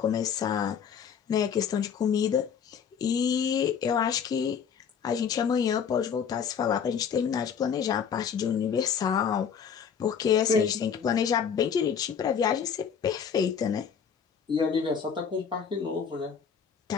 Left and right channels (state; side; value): quieter; right; 7.2 dB